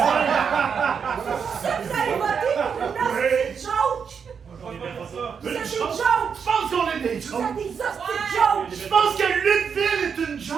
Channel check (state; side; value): quieter; left; 6.6 dB